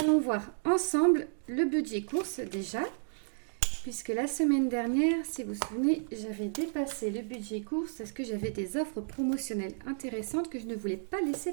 voir ensemble le budget course déjà. Puisque la semaine dernière, si vous vous souvenez, j'avais dépassé le budget course parce que j'avais des offres promotionnelles intéressantes que je ne voulais pas laisser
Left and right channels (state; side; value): silent; left; digital silence